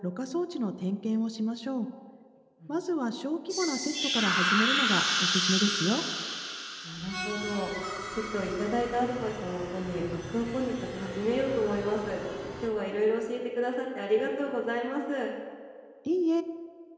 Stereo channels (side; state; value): both; identical; correlation 1.00